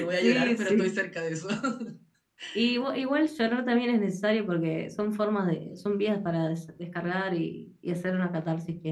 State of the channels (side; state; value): both; identical; correlation 1.00